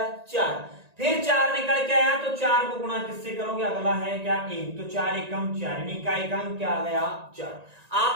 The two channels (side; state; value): left; late; 1.9 ms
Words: 4, फिर 4 निकल के आया तो 4 को गुणा किससे करोगे, अगला है क्या 1, तो 4 एकम 4, इकाई का अंक क्या आ गया 4।